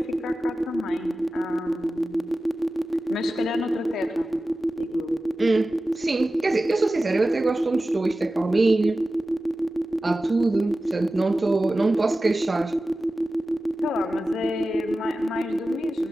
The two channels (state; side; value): normal; both; correlation 0.95